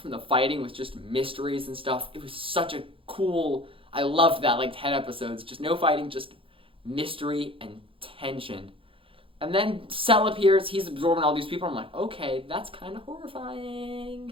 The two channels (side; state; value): left; late; 0.26 ms